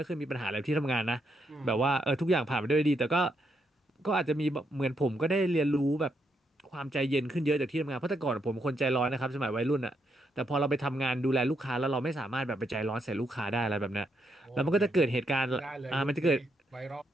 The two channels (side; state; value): both; normal; correlation 0.79